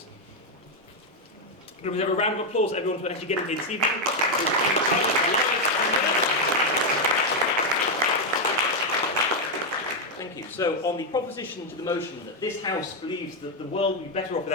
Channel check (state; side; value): normal; both; correlation 0.03